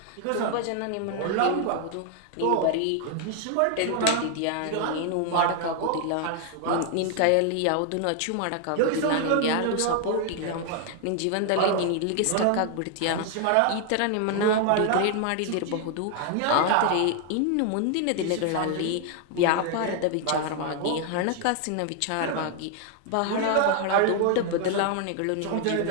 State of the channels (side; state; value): both; different; correlation 0.00